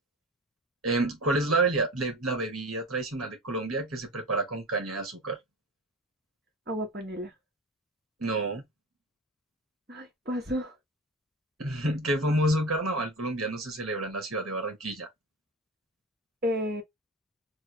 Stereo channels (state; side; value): normal; both; correlation 0.31